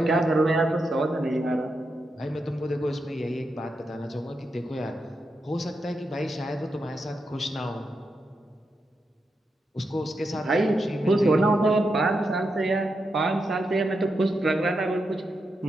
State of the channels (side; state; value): both; normal; correlation 0.85